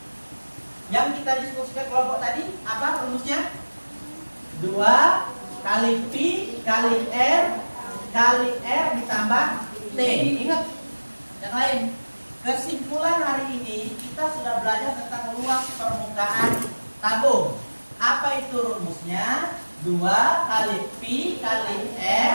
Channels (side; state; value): both; inverted; correlation -1.00